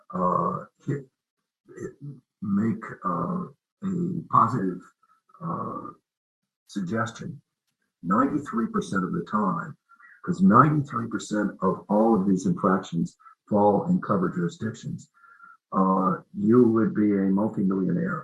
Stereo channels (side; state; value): both; identical; correlation 1.00